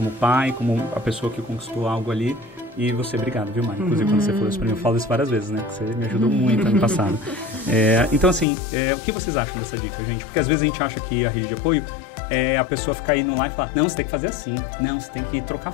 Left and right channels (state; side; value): drops out; right; at 8.5 s